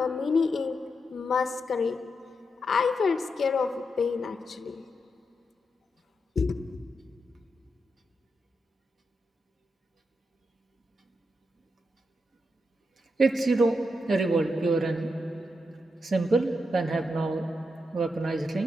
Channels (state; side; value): normal; both; correlation 0.84